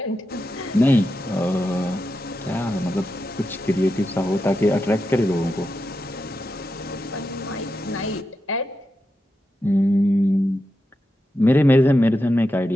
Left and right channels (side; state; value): both; normal; correlation 0.88